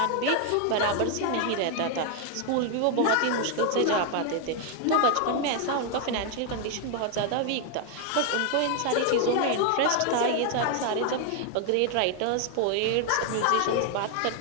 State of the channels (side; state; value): both; different; correlation 0.00